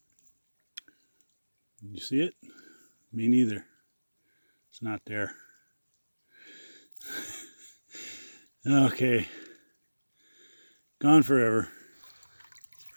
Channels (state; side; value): inverted; both; correlation -1.00